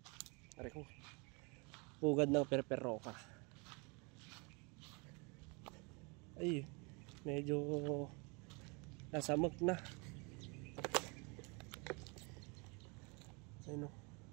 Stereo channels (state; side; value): quieter; left; 30.9 dB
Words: Pare ko. Pugad ng perperoka. Ay, medyo nasamag na. Ayun o,